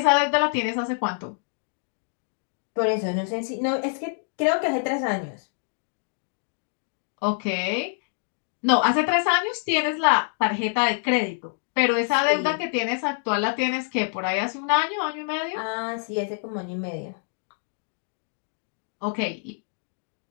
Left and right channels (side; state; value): right; silent; digital silence